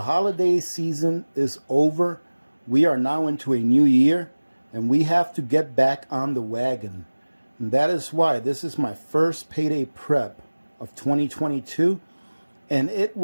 holiday season is over. We are now into a new year and we have to get back on the wagon. And that is why this is my first Payday Prep of 2022, and it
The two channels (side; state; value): both; inverted; correlation -1.00